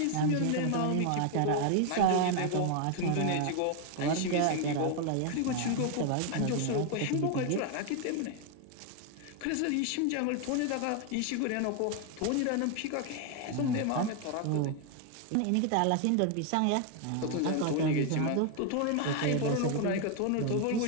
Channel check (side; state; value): both; different; correlation 0.01